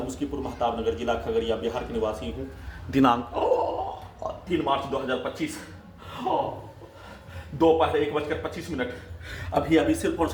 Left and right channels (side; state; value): both; identical; correlation 1.00